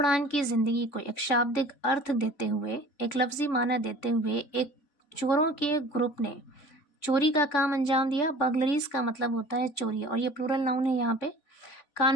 की जिंदगी को एक शाब्दिक अर्थ देते हुए, एक लफ्जी माना देते हुए एक चोरों के ग्रुप ने चोरी का काम अंजाम दिया. बर्गलरीज का मतलब होता है चोरी और ये प्लूरल नाउन है. यहाँ पे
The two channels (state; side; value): late; right; 3.5 ms